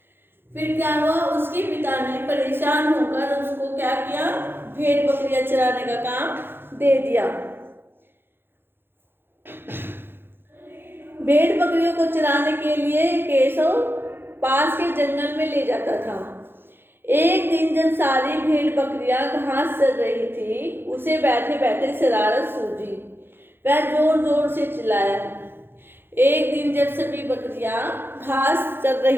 फिर क्या हुआ, उसके पिता ने परेशान होकर उसको क्या किया, भेड़ बकरियां चराने का काम दे दिया। भेड़ बकरियों को चराने के लिए केशव पास के जंगल में ले जाता था। एक दिन जब सारी भेड़ बकरियां घास चर रही थी, उसे बैठे बैठे शरारत सूझी। वह जोर जोर से चिल्लाया। एक दिन जब सभी बकरियां घास चर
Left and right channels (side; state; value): left; late; 0.10 ms